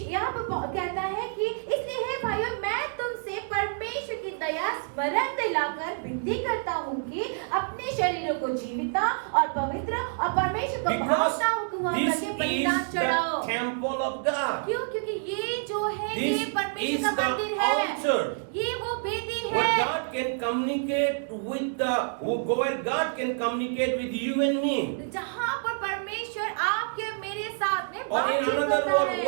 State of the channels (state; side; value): silent; left; digital silence